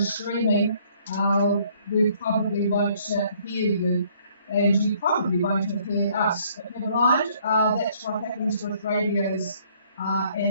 streaming, we probably won't hear you, and you probably won't have heard us. But never mind, that's what happens with radios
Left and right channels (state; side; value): inverted; both; correlation -0.63